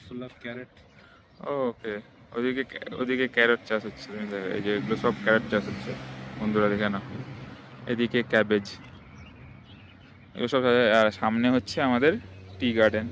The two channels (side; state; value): both; identical; correlation 1.00